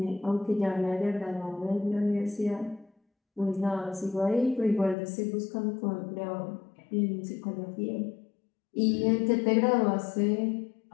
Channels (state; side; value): drops out; right; at 5.0 s